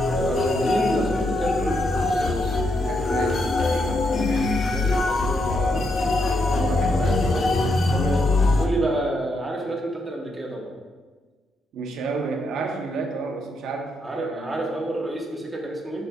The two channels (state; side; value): normal; both; correlation 0.79